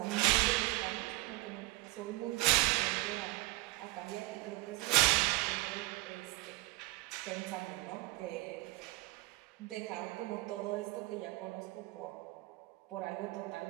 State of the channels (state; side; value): quieter; left; 20.5 dB